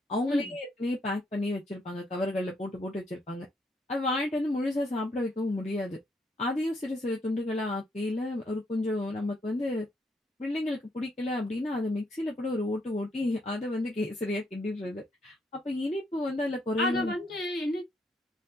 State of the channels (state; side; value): normal; both; correlation 0.74